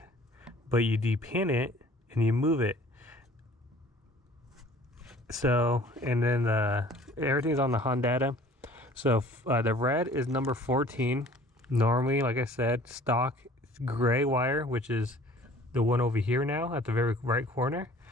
but you depin it and you move it. So, and then everything's on the Hondata. So the red is number 14. Normally, like I said, stock gray wire, which is the one over here now at the very right corner,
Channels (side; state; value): both; normal; correlation 0.51